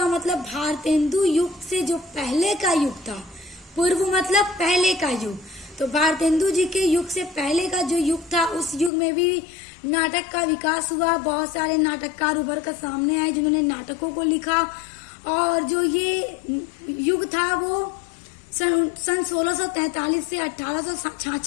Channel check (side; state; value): right; drops out; at 8.9 s